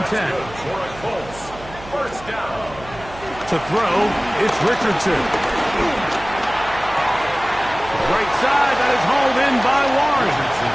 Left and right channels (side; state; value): right; noise; hum, 17 dB below the sound